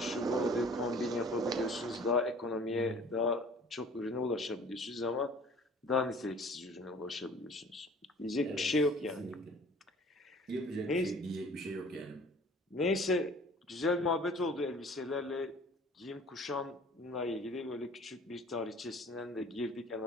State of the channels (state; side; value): normal; both; correlation 0.50